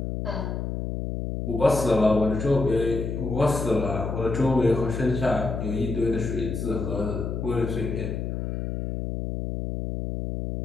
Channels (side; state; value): left; noise; hum, 4 dB below the sound